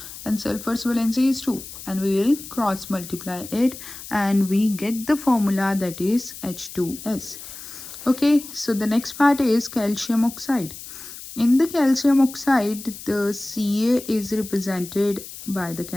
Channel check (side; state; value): left; noise; hiss, 13 dB below the sound